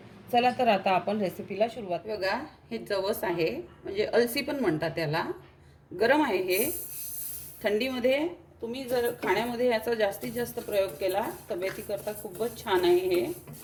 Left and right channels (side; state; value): both; identical; correlation 1.00